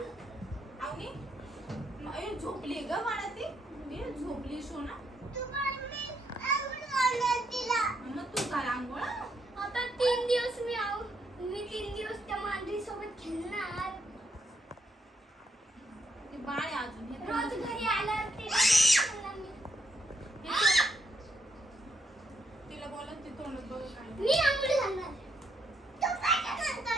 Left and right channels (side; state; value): both; normal; correlation 0.75